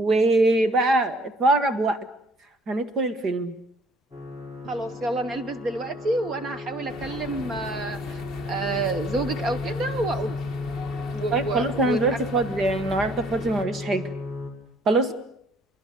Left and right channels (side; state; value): both; normal; correlation 0.58